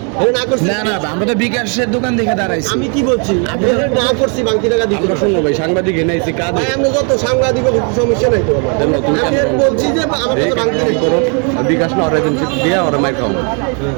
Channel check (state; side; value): quieter; left; 38.2 dB